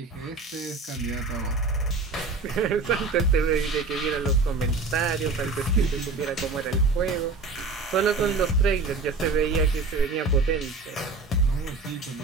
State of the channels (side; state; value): left; quieter; 3.9 dB